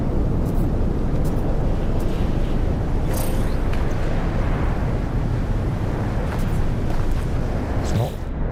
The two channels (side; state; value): both; identical; correlation 1.00